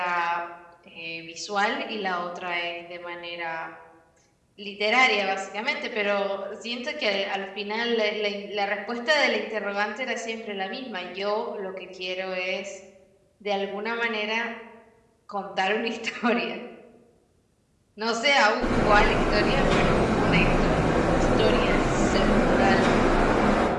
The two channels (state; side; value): identical; both; correlation 1.00